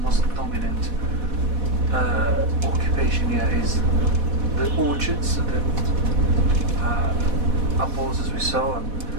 most dominant occupation here is the orchards, the apples as we saw, and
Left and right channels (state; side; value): late; left; 4.1 ms